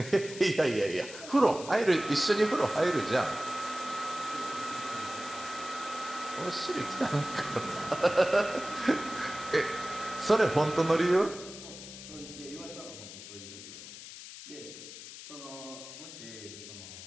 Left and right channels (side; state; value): left; noise; hiss, 13 dB below the sound